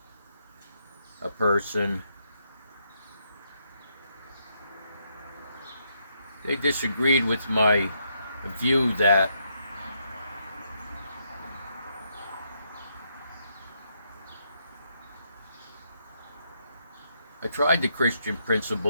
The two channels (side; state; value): both; inverted; correlation -0.77